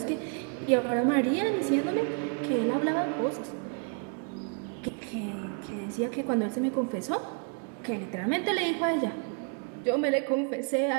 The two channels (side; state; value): left; quieter; 37.5 dB